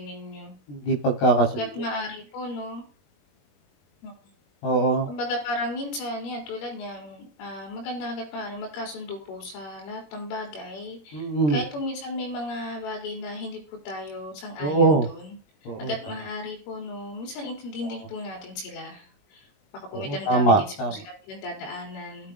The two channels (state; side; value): late; right; 21 ms